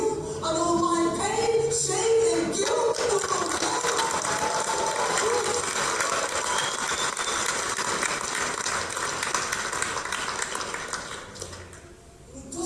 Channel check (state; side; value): identical; both; correlation 1.00